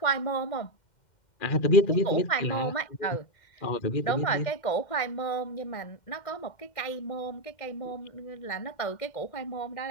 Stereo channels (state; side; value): late; right; 2.1 ms